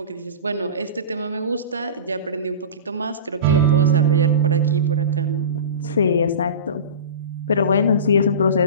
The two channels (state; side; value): inverted; both; correlation -0.31